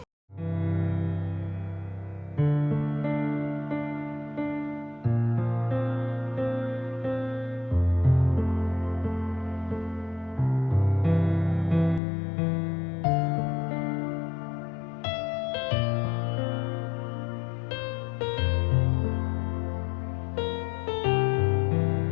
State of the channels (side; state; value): right; drops out; at 12.0 s